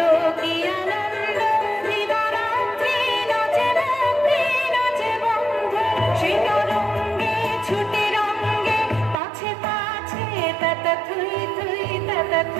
কি আনন্দ দিবারাত্রি নাচে রাত্রি নাচে বন্ধু শিররঙ্গে ছুটে রঙ্গে পাছে পাছে তাতা থই থই তাতা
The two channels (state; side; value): drops out; left; at 9.2 s